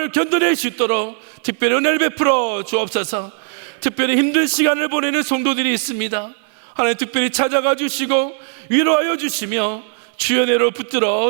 견뎌낼 수 있도록 특별히 은혜를 베풀어 주옵소서. 특별히 힘든 시간을 보내는 성도들이 있습니다. 하나님, 특별히 찾아가 주시고 위로하여 주시며 주의 은혜로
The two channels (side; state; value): left; silent; 67 dB below the other